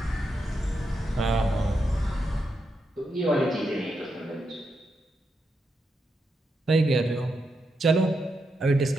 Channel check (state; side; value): normal; both; correlation 0.84